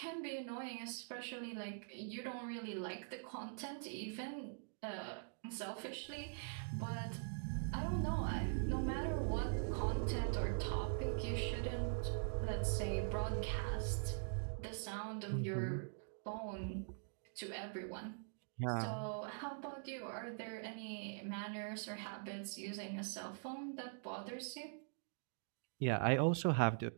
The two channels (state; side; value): silent; left; digital silence